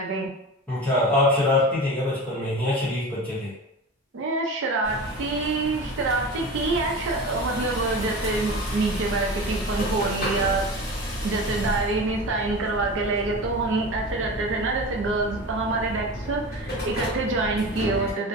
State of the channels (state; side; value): normal; both; correlation 0.31